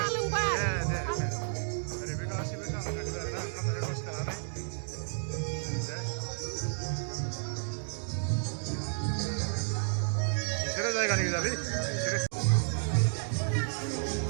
दे ओरै बे गासिबो सा लोंगासिनो आरोना ओंखाम जानाय दसे थानानै बिसोरो जायगानि गोजालै बिसोरो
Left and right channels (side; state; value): left; silent; digital silence